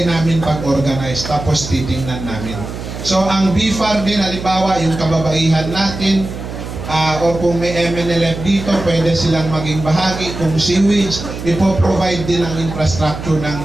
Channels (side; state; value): right; noise; hum, 9 dB below the sound